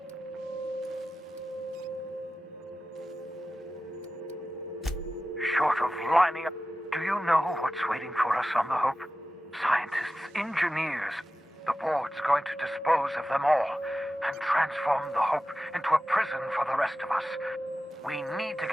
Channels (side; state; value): both; normal; correlation 0.94